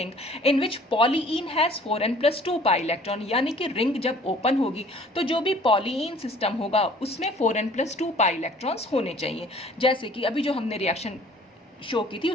in which polyene has 4n+2 pi electron, यानी कि रिंग जब ओपन होगी तो जो भी पॉलीइन सिस्टम होगा उसमें 4n+2 पाई इलेक्ट्रॉन्स होने चाहिए। जैसे कि अभी जो हमने रिएक्शन शो की थी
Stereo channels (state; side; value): normal; both; correlation 0.53